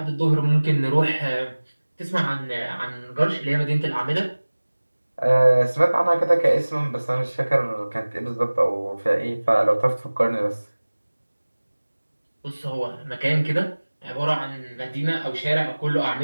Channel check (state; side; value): inverted; both; correlation -1.00